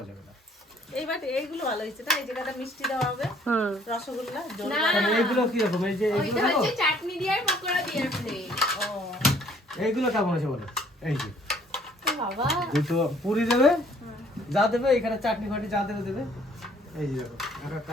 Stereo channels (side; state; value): both; normal; correlation 0.60